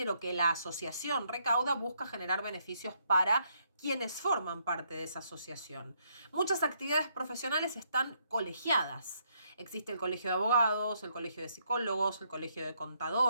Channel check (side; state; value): both; inverted; correlation -0.73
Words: que la asociación recauda, busca generar beneficios para quienes forman parte de esa asociación. Muchas actividades profesionales están colegiadas. Existe el colegio de abogados, el colegio de psicólogos, el colegio de